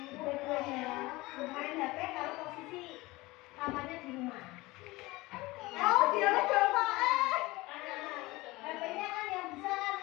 dua-duanya main HP kalau posisi kamarnya di rumah. Oh, dia lo coba HP-nya kan yang besar,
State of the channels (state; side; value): quieter; right; 21.0 dB